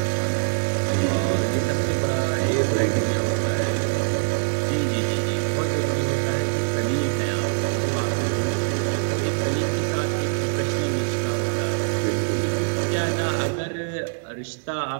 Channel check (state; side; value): silent; left; 63 dB below the other